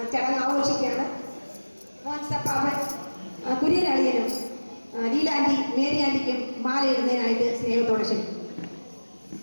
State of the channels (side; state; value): both; inverted; correlation -1.00